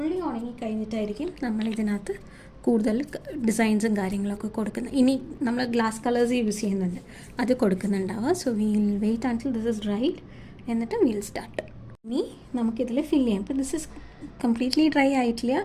ഉണങ്ങി കഴിഞ്ഞിട്ടായിരിക്കും നമ്മൾ ഇതിനകത്ത് കൂടുതൽ ഡിസൈൻസും കാര്യങ്ങളൊക്കെ കൊടുക്കുന്നത്. ഇനി നമ്മൾ ഗ്ലാസ് കളേഴ്സ് യൂസ് ചെയ്യുന്നുണ്ട്, അത് കൊടുക്കുന്നുണ്ടാവുക. So we'll wait until this is dried, എന്നിട്ട് വീൽ സ്റ്റാർട്ട്. ഇനി നമുക്കിതിൽ ഫില്ല് ചെയ്യാം. ഇപ്പോൾ ദിസ് ഇസ് കംപ്ലീറ്റ്ലി ഡ്രൈ ആയിട്ടില്ല,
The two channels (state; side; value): identical; both; correlation 1.00